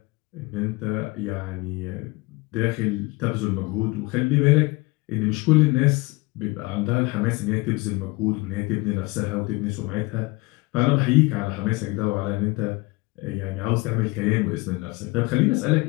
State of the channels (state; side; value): quieter; right; 23.8 dB